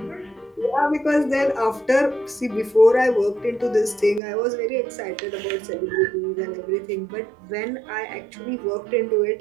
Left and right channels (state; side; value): drops out; left; at 4.2 s